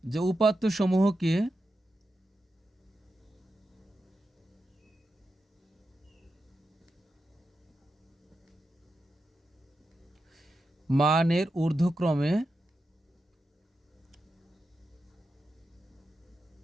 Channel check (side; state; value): both; normal; correlation 0.89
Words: যে উপাত্ত সমূহকে মানের ঊর্ধ্বক্রমে